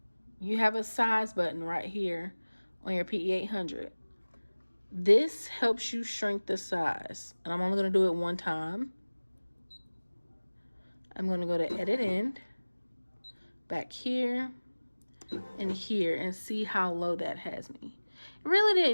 You have a size button right here on your PE800. This helps you shrink the size. And I'm only going to do it 1 time. I'm going to go to Edit End, back here, and here, and see how low that has me. It really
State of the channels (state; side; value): inverted; both; correlation -1.00